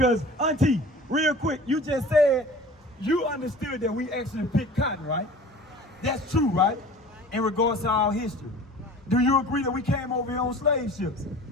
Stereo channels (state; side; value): normal; both; correlation 0.42